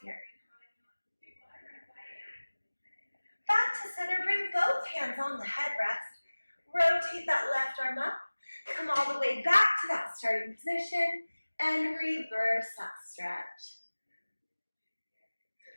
here. Back to center. Bring both hands on the headrest. Rotate that left arm up. Come all the way back to that starting position. And reverse that stretch.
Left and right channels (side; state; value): both; inverted; correlation -1.00